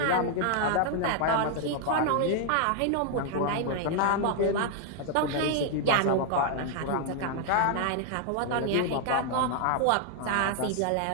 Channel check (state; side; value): different; both; correlation 0.00